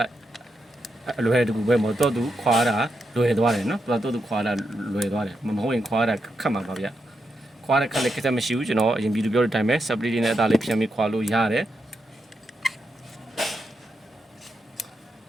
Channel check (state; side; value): normal; both; correlation 0.84